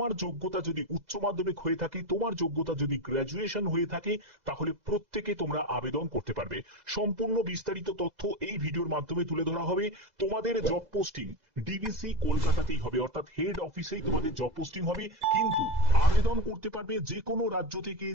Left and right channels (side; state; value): left; late; 2.0 ms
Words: যোগ্যতা যদি উচ্চ মাধ্যমিক হয়ে থাকে, তোমার যোগ্যতা যদি গ্র্যাজুয়েশন হয়ে থাকে, তাহলে প্রত্যেকে তোমরা আবেদন করতে পারবে। সম্পূর্ণ বিস্তারিত তথ্য এই ভিডিওর মাধ্যমে তুলে ধরা হবে। তোমাদের জব পোস্টিং ডিবিসি কলকাতাতেই হবে, অর্থাৎ হেড অফিসেই তোমাদের জব পোস্টিং হবে, কিন্তু আবেদন করতে পারবে যে কোনো রাজ্য থেকে,